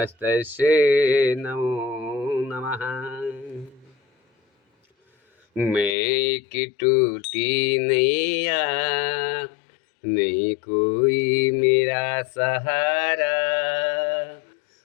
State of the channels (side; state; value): right; drops out; at 6.0 s